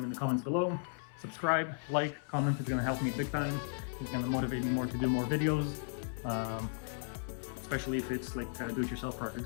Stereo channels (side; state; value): right; silent; 54 dB below the other